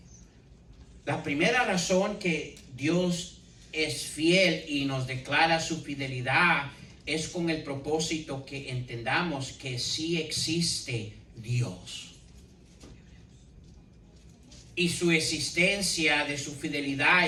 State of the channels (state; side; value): identical; both; correlation 1.00